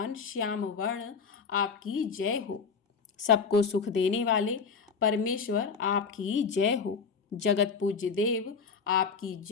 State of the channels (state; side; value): quieter; right; 5.6 dB